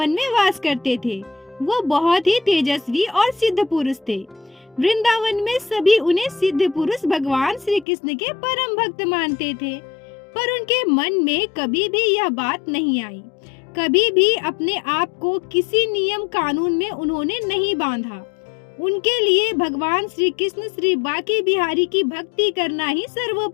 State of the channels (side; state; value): right; drops out; at 7.9 s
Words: में वास करते थे। वो बहुत ही तेजस्वी और सिद्ध पुरुष थे। वृंदावन में सभी उन्हें सिद्ध पुरुष भगवान श्री कृष्ण के परम भक्त मानते थे। पर उनके मन में कभी भी यह बात नहीं आई। कभी भी अपने आप को किसी नियम कानून में उन्होंने नहीं बांधा। उनके लिए भगवान श्री कृष्ण श्री बांके बिहारी की भक्ति करना ही